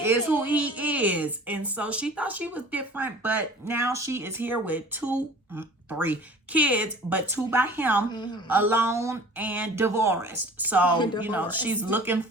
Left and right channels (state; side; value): normal; both; correlation 0.45